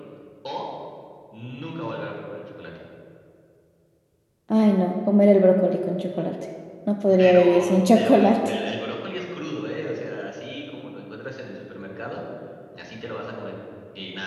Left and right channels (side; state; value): both; identical; correlation 1.00